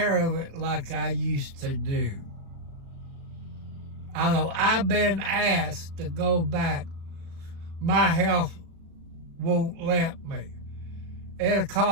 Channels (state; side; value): late; left; 36 ms